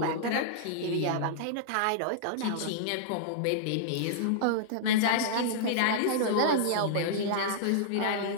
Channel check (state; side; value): different; both; correlation -0.02